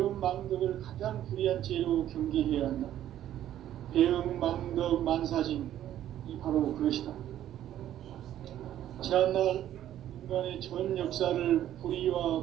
망덕을 가장 불의한 죄로 경계해야 한다. 배음 망덕 만사징이 바로 그것이다. 지난날 인간의 전 역사를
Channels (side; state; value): left; quieter; 11.9 dB